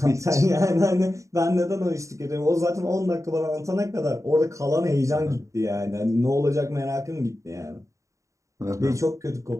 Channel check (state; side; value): late; left; 0.15 ms